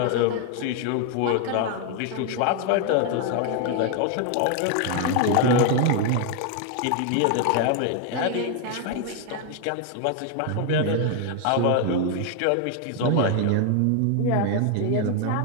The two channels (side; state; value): both; different; correlation 0.01